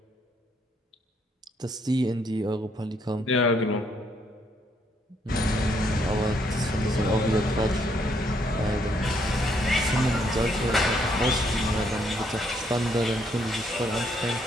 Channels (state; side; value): normal; both; correlation 0.71